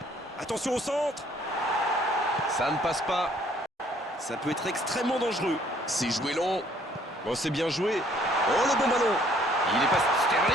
Attention au centre. Ça ne passe pas. Ça peut être extrêmement dangereux. C'est joué long. Oh, c'est bien joué. Oh, le bon ballon. Il est passé.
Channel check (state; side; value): normal; both; correlation 0.61